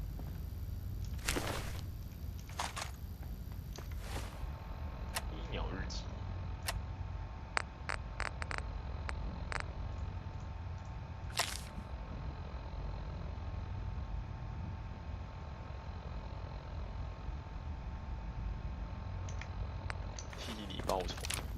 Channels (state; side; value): identical; both; correlation 1.00